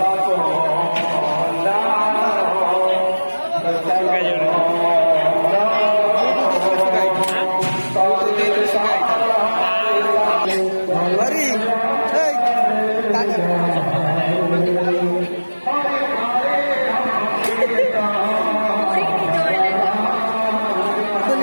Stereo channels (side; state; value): both; inverted; correlation -1.00